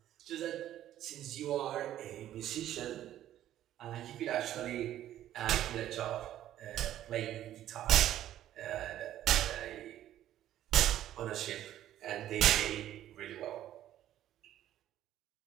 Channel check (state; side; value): quieter; left; 12.4 dB